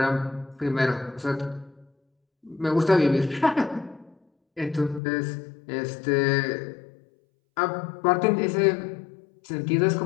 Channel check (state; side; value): drops out; right; at 5.0 s